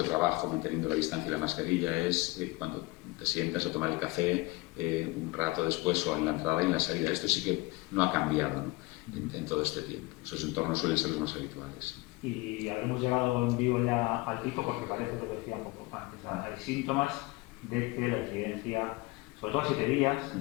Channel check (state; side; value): quieter; right; 22.6 dB